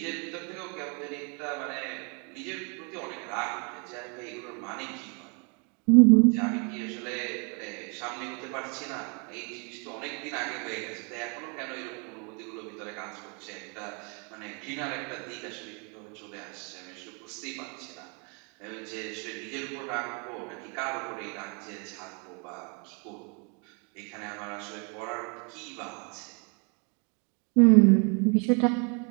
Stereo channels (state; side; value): quieter; left; 35.2 dB